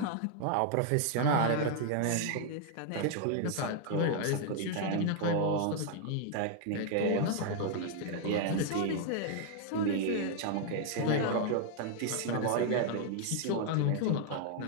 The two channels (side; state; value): both; different; correlation 0.00